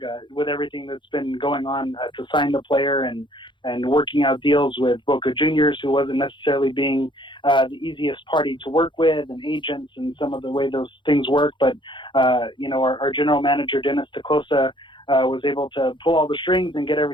with everything that's been going on to sign the player and working out deals with Boca Juniors, who wasn't necessarily being the easiest party to work with, and agents and some of the way those things work. But our general manager Dennis Teclosa was able to pull all the strings and get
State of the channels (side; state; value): right; late; 0.23 ms